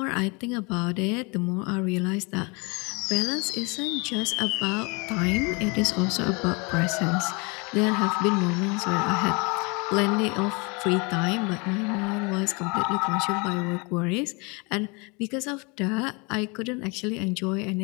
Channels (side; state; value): right; quieter; 29.6 dB